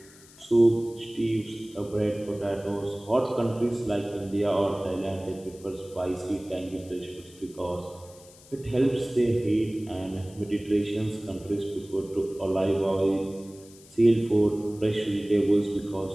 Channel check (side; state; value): left; noise; hiss, 23 dB below the sound